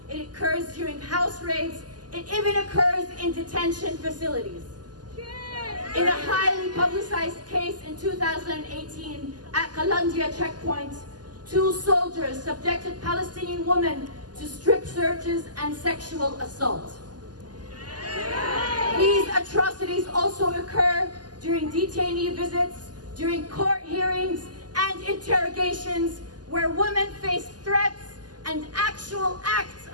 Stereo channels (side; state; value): left; late; 0.70 ms